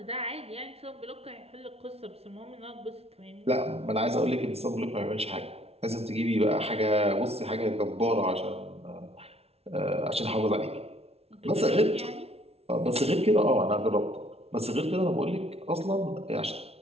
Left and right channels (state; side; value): late; left; 0.30 ms